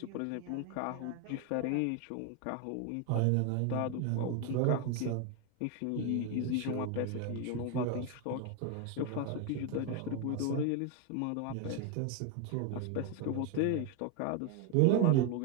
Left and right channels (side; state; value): both; different; correlation 0.01